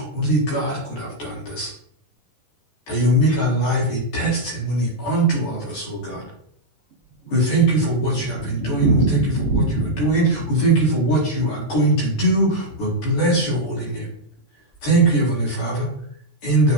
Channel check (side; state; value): right; late; 14 ms